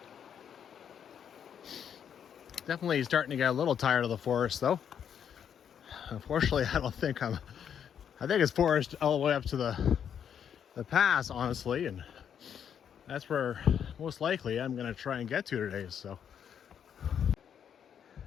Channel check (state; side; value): quieter; right; 8.4 dB